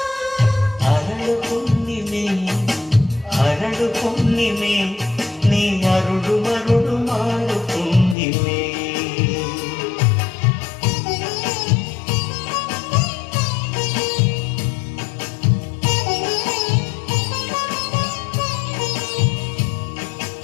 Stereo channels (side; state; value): right; drops out; at 8.2 s